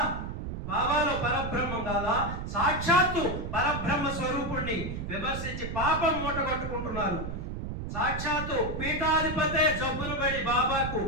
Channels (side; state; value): right; noise; rumble, 6 dB below the sound